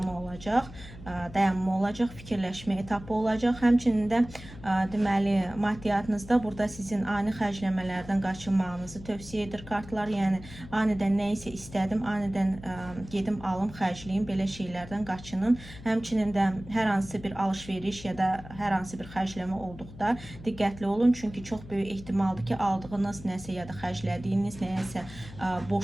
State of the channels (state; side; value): noise; left; hum, 16 dB below the sound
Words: olacaq, dayanma olacaq, fikirləşmə etapı olacaq. Həmçinin də deməli maddiyyatınızda burada sizin ani xərcləmələrdən qaçınmağınızı tövsiyə edir kartlar. Yəni anidən nə isə istədim, anidən gedim alım, xərcləyim, belə şeylərdən qaçının. Həmçinin də hər hansı bir alış-veriş ya da hər hansı bir xərcləmə olduqda diqqətli olun, çünki çox böyük ehtimaldır ki, aldığınız nəsə ya da xərclədiyiniz nəsə